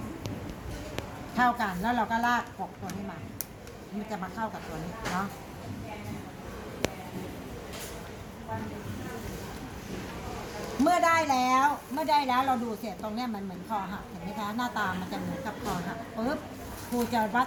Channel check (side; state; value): both; identical; correlation 1.00